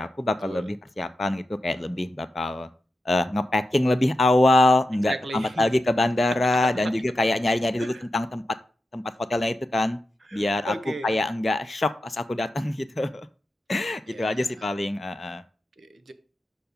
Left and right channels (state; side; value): normal; both; correlation 0.90